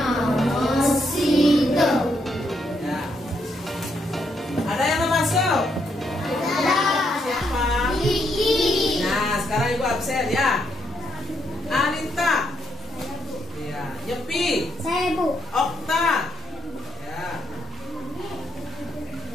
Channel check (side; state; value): both; normal; correlation 0.77